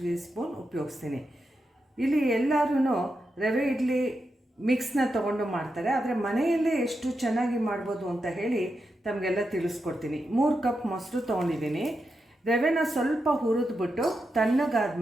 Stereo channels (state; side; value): normal; both; correlation 0.87